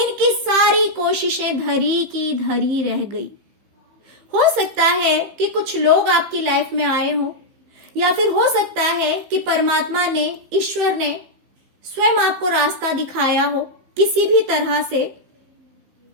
सारी कोशिशें धरी की धरी रह गई। हो सकता है कि कुछ लोग आपकी लाइफ में आए हो, या फिर हो सकता है कि परमात्मा ने, ईश्वर ने स्वयं आपको रास्ता दिखाया हो किसी भी तरह से।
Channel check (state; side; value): late; left; 15 ms